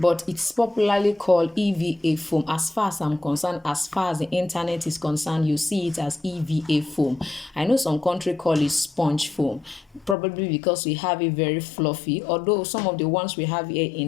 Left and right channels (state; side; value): drops out; right; at 10.2 s